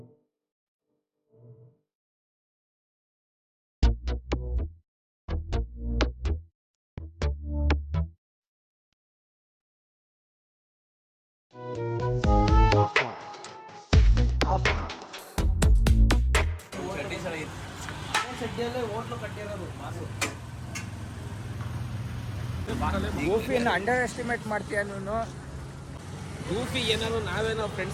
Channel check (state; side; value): identical; both; correlation 1.00